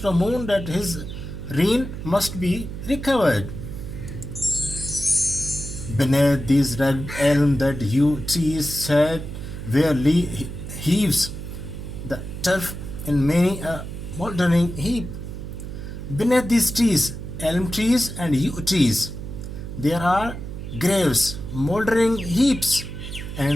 the moon that his reign must be recovered. Beneath these red elm that yew trees sat, where heaves the turf in many a mouldering heap. Beneath these trees, elm trees and yew trees, there are graves, mouldering heaps,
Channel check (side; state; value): right; noise; hum, 8 dB below the sound